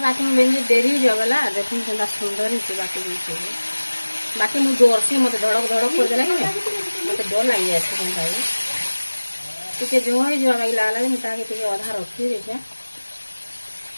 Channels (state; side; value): inverted; both; correlation -1.00